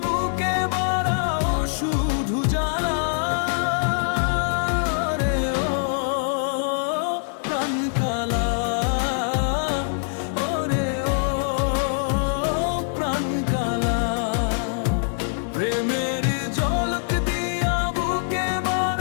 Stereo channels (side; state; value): right; silent; digital silence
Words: বুকে বাড়াও শুধু জ্বালা রে ও প্রাণ কালা। ওরে ও প্রাণ কালা, প্রেমের ঝলক দিয়া বুকে